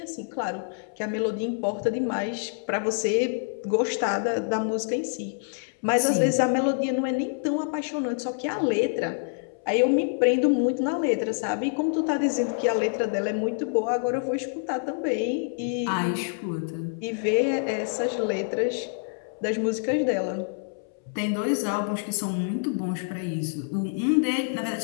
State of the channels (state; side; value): silent; right; 60 dB below the other